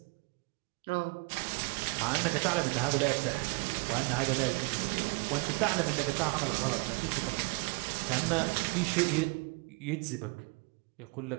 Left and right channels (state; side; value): quieter; left; 29.8 dB